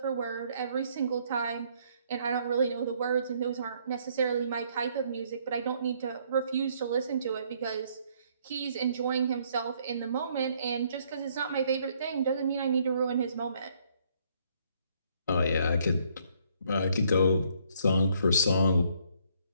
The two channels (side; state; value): both; inverted; correlation -0.67